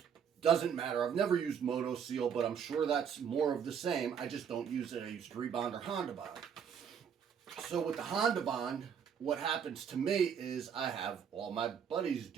Doesn't matter. I've never used Moto Seal, but I'm sure that's more of the same. I just don't use it. I use 3 Bond or Honda Bond. So with the Honda Bond, what happens to me is I have all my buddies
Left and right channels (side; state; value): left; quieter; 7.6 dB